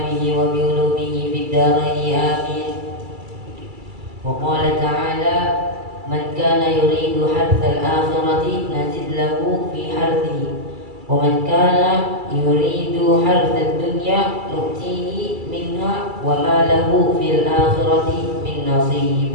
به وبعلومه في الدارين آمين. وقال تعالى: من كان يريد حرث الآخرة نزد له في حرثه ومن كان يريد حرث الدنيا نؤتيه منها وما له في الآخرة من نصيب.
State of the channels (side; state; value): left; late; 2.3 ms